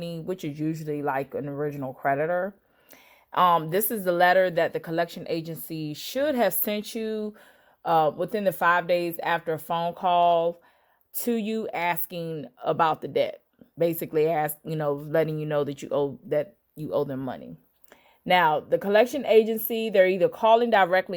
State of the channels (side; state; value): both; identical; correlation 1.00